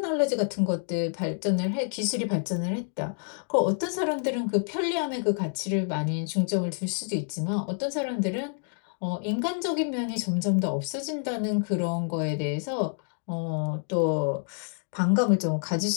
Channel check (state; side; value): silent; right; digital silence